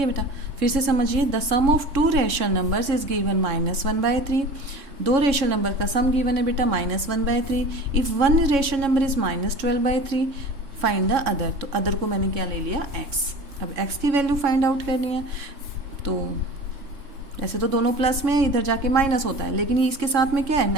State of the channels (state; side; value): late; left; 3.6 ms